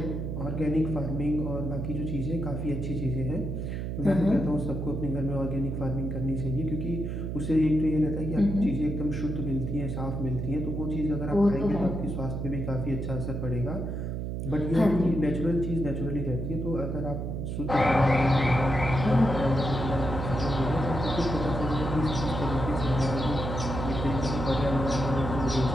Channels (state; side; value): noise; right; hum, 3 dB below the sound